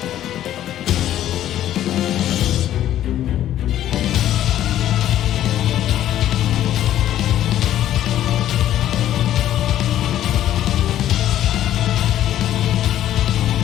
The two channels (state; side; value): quieter; right; 12.1 dB